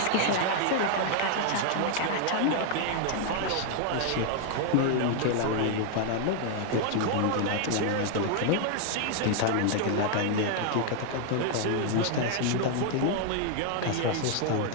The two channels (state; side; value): different; both; correlation 0.00